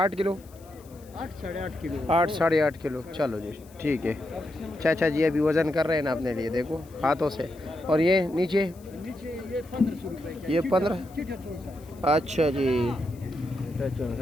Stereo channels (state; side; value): noise; left; hiss, 26 dB below the sound